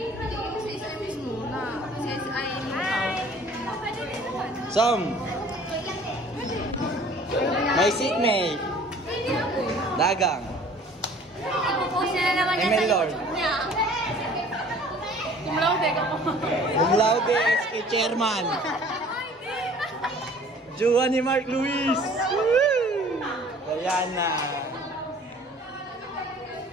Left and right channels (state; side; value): normal; both; correlation 0.50